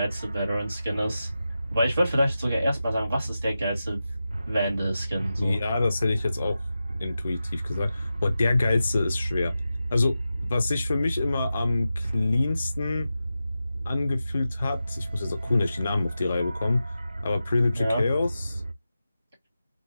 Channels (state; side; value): inverted; both; correlation -0.92